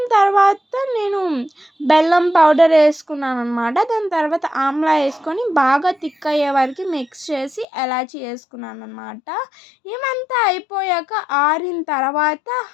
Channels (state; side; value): drops out; right; at 7.7 s